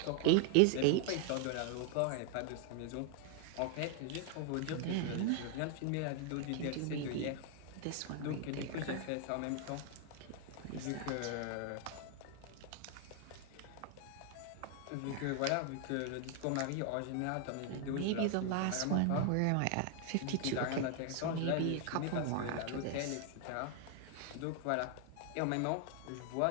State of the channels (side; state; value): both; different; correlation 0.00